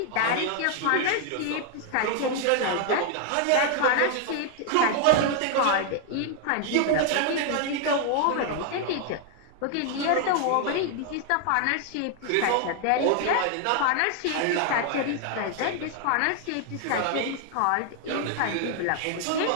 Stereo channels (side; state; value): both; different; correlation 0.00